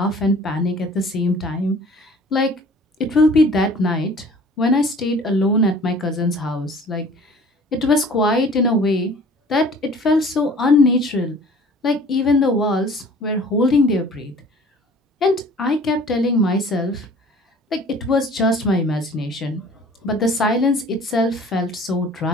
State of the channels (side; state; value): both; normal; correlation 0.49